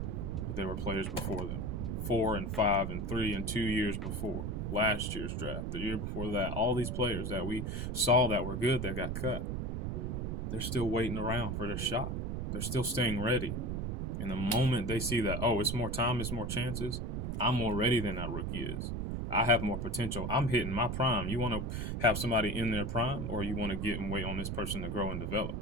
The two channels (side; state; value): right; noise; rumble, 2 dB below the sound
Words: but there were players before them, 4 and 5 and 3 and 2 years before. Last year's draft, the year before that, all these players that we saw that were good that got cut, they're still waiting around for their shot. They're still staying ready. And the moment they see that, it's more time, it's more chances, I'm more ready than that rookie is. I have more potential. I'm hitting my prime. You want to have somebody in their prime, or you want to get and wait on this person to grow and develop?